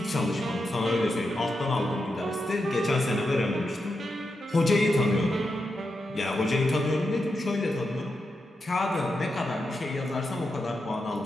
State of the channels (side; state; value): both; normal; correlation 0.87